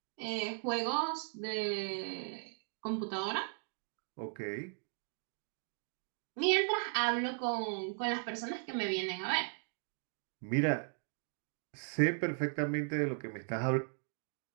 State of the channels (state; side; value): silent; left; 53 dB below the other